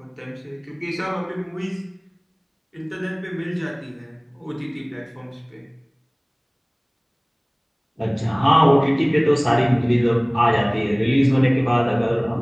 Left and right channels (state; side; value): identical; both; correlation 1.00